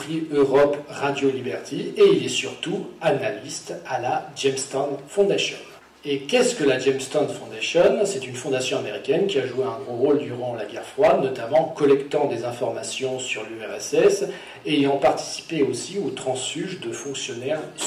Europe, Radio Liberty, et il est surtout analyste à la Jamestown Foundation. Et qu'est-ce que la Jamestown Foundation? C'est une fondation américaine qui a joué un gros rôle durant la guerre froide, notamment en collectant des informations sur l'URSS et ayant participé aussi au transfuge de fonctionnaires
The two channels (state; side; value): identical; both; correlation 1.00